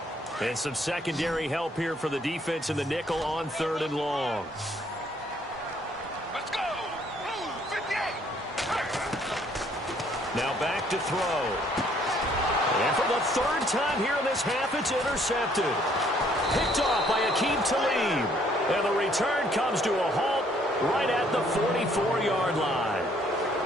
And some secondary help here for the defense in the nickel on 3rd and long. Let's go. Now back to throw. And for the 3rd time here in this half, it's intercepted. Picked off by Akeem Talib. And the return comes to a halt right at the 44-yard line.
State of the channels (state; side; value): normal; both; correlation 0.64